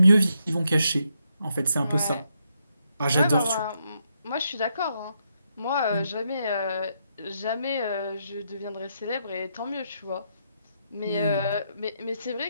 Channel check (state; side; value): inverted; both; correlation -0.79